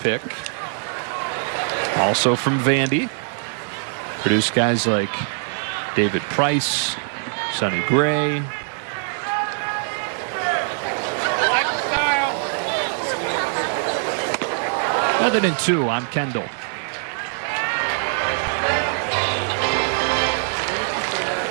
Also from Vandy. Produced guys like David Price, Sonny Gray. Other than 2 on Kendall.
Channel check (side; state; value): left; silent; 62 dB below the other